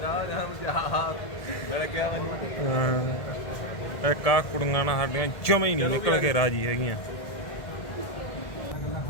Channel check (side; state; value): right; late; 1.7 ms